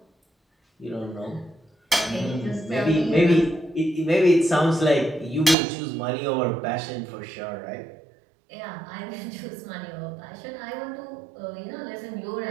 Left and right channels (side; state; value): left; drops out; at 5.6 s